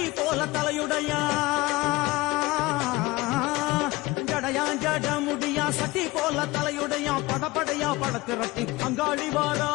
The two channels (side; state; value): right; quieter; 20.9 dB